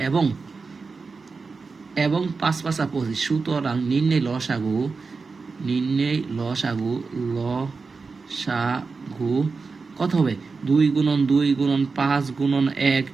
এবং 5 5 25। সুতরাং নির্ণয় লসাগু কত হবে? 2 গুণন 2 গুণন 5 গুণন 1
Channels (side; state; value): left; quieter; 4.5 dB